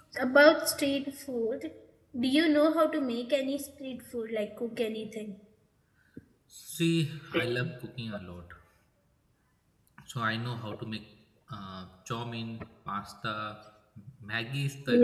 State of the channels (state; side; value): identical; both; correlation 1.00